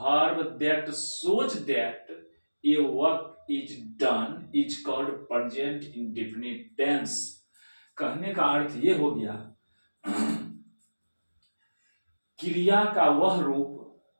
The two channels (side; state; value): both; inverted; correlation -1.00